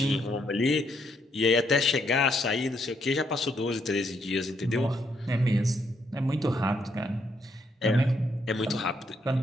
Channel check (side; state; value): both; normal; correlation 0.75